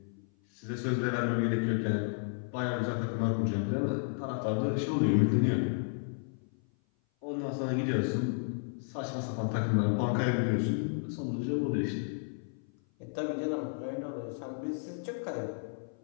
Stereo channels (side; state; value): right; silent; 55 dB below the other